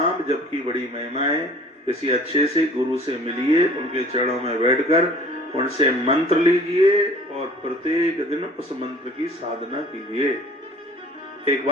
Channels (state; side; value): normal; both; correlation 0.48